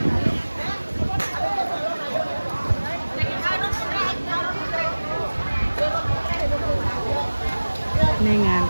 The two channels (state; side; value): inverted; both; correlation -1.00